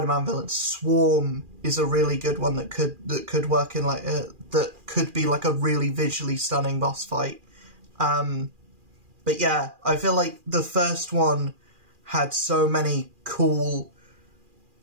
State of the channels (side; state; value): left; late; 2.4 ms